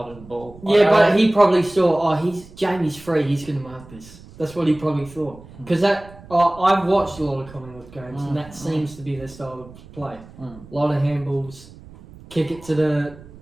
of the ball. Yeah, but he probably saw, Jamie's free, he's going to mark this. That's what he probably thought. Because I've watched a lot of Collingwood games, and that seems to be their style of play. A lot of handballs, kick it to the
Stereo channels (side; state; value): right; noise; rumble, 20 dB below the sound